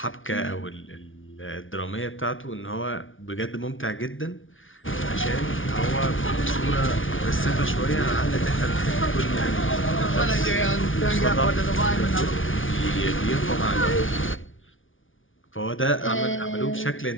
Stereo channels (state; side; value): late; right; 0.57 ms